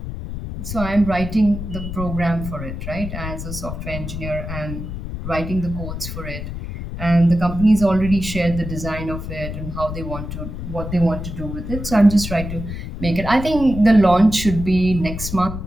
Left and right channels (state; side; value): noise; left; rumble, 7 dB below the sound